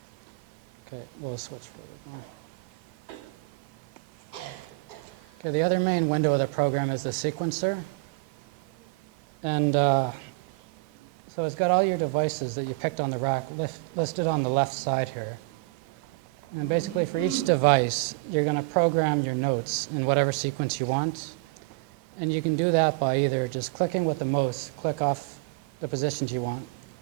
Okay, we'll switch. Okay, the other main window of the program is the sequencer. And so it's got all your devices that you picked on the rack listed on the left side here. And basically for each device, you're going to program your notes in whatever sequence you want. And you can do that by either just clicking with the mouse, click off the positions you want,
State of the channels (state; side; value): quieter; left; 26.1 dB